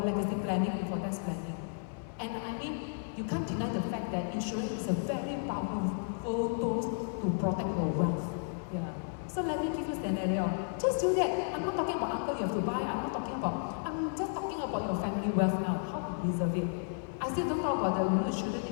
legacy planning and for tax planning. And I mean, you can't deny the fact that insurance is a very powerful tool to protect your wealth. Yeah. So let me give you a scenario. Just do that. I'm not talking about uncle you have to buy. I'm I'm just talking about your family wealth now, how to preserve it. I still don't talk about the you shouldn't need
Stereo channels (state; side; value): silent; right; digital silence